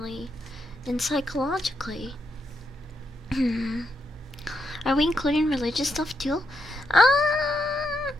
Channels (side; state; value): both; normal; correlation 0.81